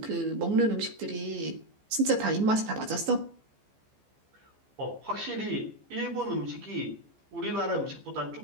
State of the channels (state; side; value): late; left; 14 ms